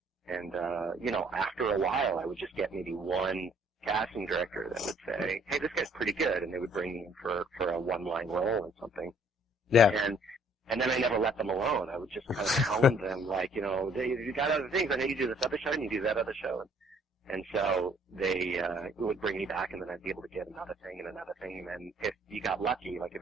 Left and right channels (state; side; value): normal; both; correlation 0.60